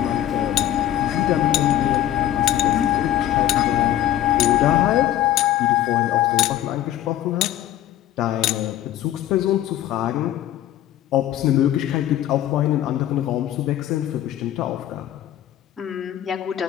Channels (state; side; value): quieter; right; 12.4 dB